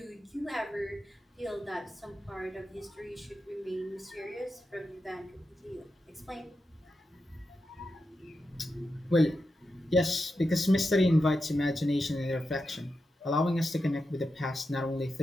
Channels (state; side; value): normal; both; correlation 0.88